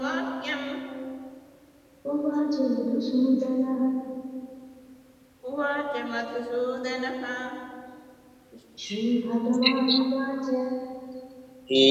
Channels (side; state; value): both; identical; correlation 1.00